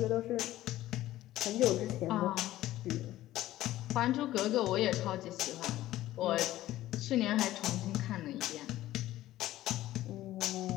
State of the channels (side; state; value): right; quieter; 15.0 dB